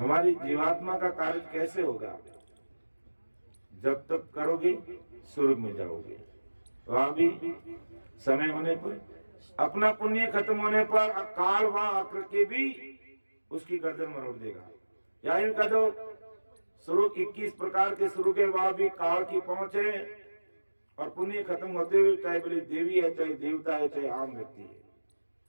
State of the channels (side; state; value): both; inverted; correlation -1.00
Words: जीवात्मा का कार्य कैसे होगा। जब तक करोगे स्वर्ग में जाओगे, वहां भी समय होने पर, अपना पुण्य खत्म होने पर काल वहां आकर के भी उसकी गर्दन मरोड़ देगा। या यूं कह दो, स्वर्ग 21 प्रकार के स्वर्ग के वहां भी काल की पहुंच है, और पुण्य खत्म होते हुए चाहे बड़ी देवी है, चाहे देवता है, चाहे आम व्यक्ति है,